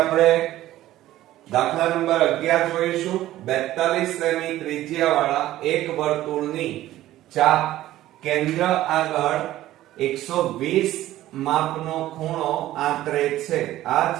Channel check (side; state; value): left; quieter; 14.6 dB